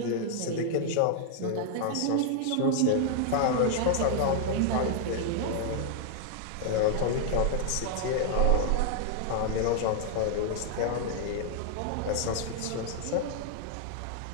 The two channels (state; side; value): different; both; correlation 0.00